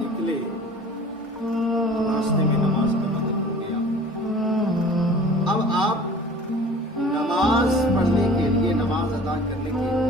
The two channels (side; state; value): both; normal; correlation 0.45